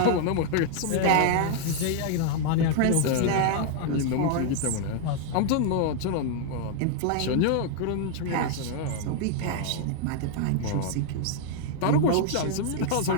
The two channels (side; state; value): both; different; correlation 0.00